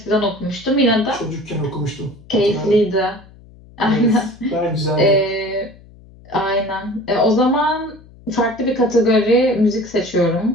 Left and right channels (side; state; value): left; noise; hum, 23 dB below the sound